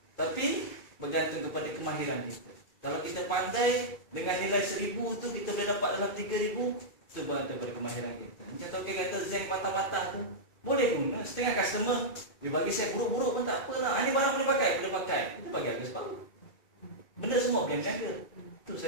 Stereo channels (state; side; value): late; right; 2.3 ms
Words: Tapi bergantung kepada kemahiran kita. Kalau kita pandai dengan nilai 1,000 tu kita boleh dapat dalam 3,000, itu bergantung kepada kemahiran kita. Macam token kata zinc patah-patah tu, boleh guna. Setengah customer dia bagi saya buruk-buruk pun tak apalah. Ini barang boleh pakai. Kita bagi harga separuh. Benda semua boleh berniaga. Itu